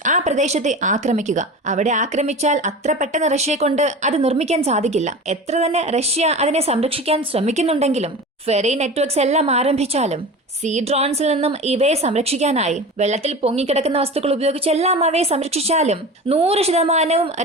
ആ പ്രദേശത്തെ ആക്രമിക്കുക. അവിടെ ആക്രമിച്ചാൽ അത്ര പെട്ടെന്ന് റഷ്യയെ കൊണ്ട് അത് നിർമ്മിക്കാൻ സാധിക്കില്ല. എത്ര തന്നെ റഷ്യ അതിനെ സംരക്ഷിക്കാൻ ശ്രമിക്കുന്നുണ്ടെങ്കിലും ഫെറി നെറ്റ്വർക്ക്സ് എല്ലാം ആരംഭിച്ചാലും സീ ഡ്രോൺസിൽ നിന്നും ഇവയെ സംരക്ഷിക്കാനായി വെള്ളത്തിൽ പൊങ്ങിക്കിടക്കുന്ന വസ്തുക്കൾ ഉപയോഗിച്ച് എല്ലാം അവയെ സംരക്ഷിച്ചാലും 100%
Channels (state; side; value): normal; both; correlation 0.32